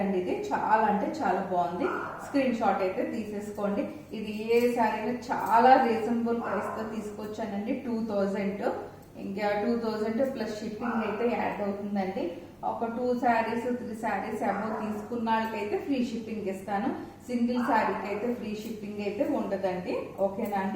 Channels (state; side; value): identical; both; correlation 1.00